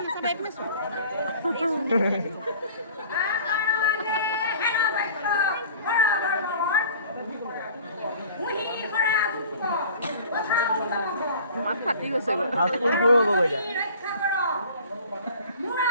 মাত ফাটি গৈছে স্কুল গৈ হ'ব গৈ যা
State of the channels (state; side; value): inverted; both; correlation -0.47